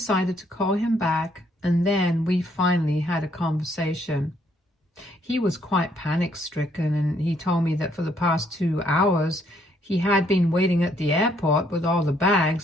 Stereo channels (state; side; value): normal; both; correlation 0.69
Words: to call him back, and then we finally had a conversation. He was quite panic-stricken, and he told me that for the past 2 hours, he had been waiting at the airport with all the